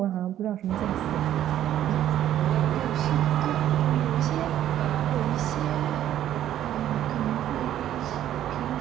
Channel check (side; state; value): left; quieter; 11.7 dB